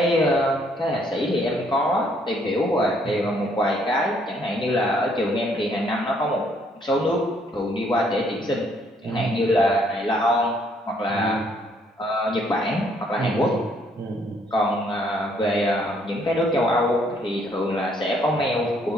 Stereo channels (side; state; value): both; normal; correlation 0.67